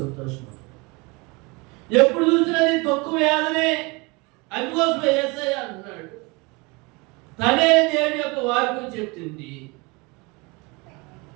ఎప్పుడు చూసినా నీ దుఃఖం వేదనే. అందుకోసం యేసయ్య అన్నాడు, తనే దేవుని యొక్క వాక్యం చెప్తుంది.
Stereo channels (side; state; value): left; quieter; 26.8 dB